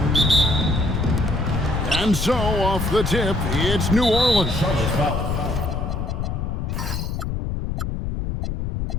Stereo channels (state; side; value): noise; left; rumble, 3 dB below the sound